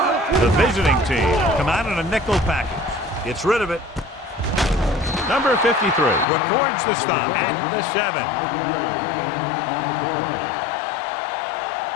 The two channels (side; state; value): right; drops out; at 6.2 s